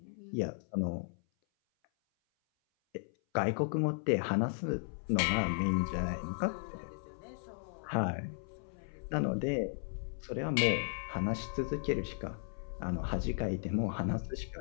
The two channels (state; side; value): silent; right; 54 dB below the other